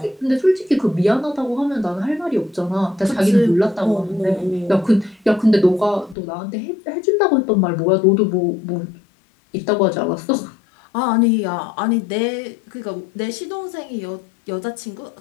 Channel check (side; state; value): right; drops out; at 6.2 s